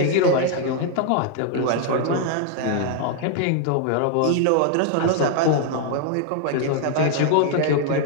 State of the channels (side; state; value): both; different; correlation 0.00